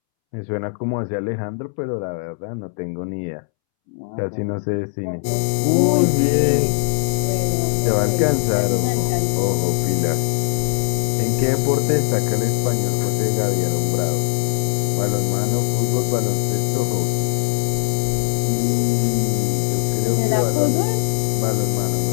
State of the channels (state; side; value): silent; right; 66 dB below the other